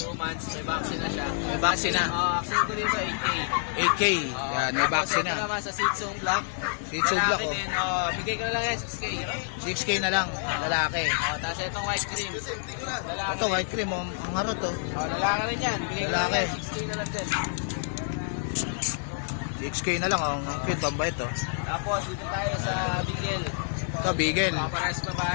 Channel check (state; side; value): silent; right; digital silence